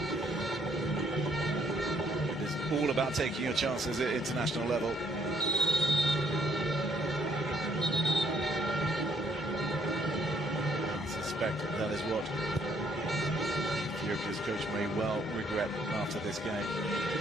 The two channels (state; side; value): normal; both; correlation 0.68